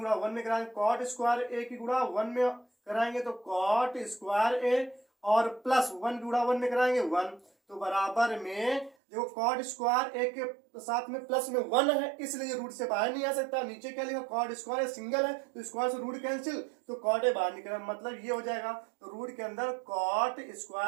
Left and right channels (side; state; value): left; drops out; at 9.0 s